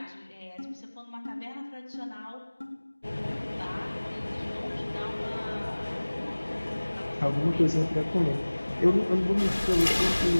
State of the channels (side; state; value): both; inverted; correlation -1.00